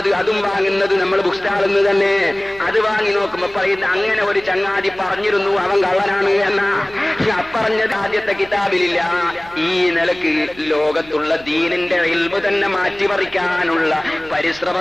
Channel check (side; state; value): right; noise; hum, 23 dB below the sound